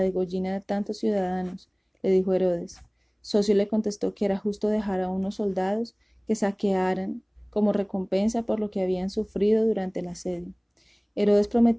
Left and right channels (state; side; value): identical; both; correlation 1.00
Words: de tantos ciudadanos, le dijo Herodes. Socio le contestó que era justo dejar a unos soldados que saquearan como recompensa por lo que habían sufrido durante el asedio. Herodes